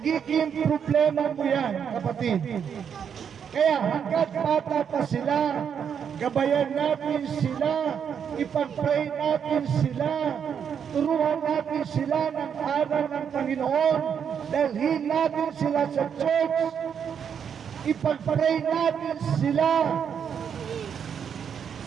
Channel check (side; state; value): left; quieter; 7.6 dB